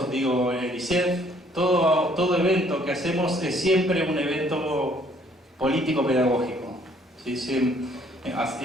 digo el ISEF, todo evento que hacemos es siempre un evento político-pedagógico. ¿sí? Sí,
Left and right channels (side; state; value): both; normal; correlation 0.62